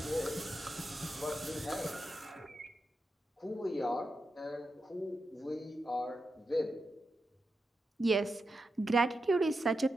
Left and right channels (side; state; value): both; normal; correlation 0.88